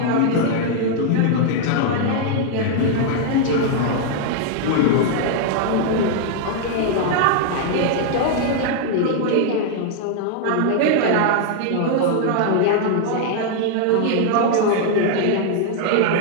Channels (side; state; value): both; different; correlation 0.00